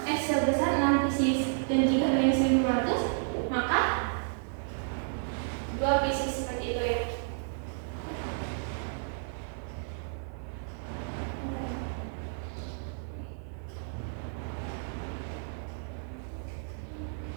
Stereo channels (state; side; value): silent; left; 57 dB below the other